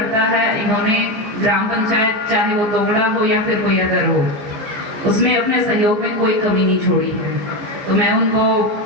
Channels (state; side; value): late; left; 14 ms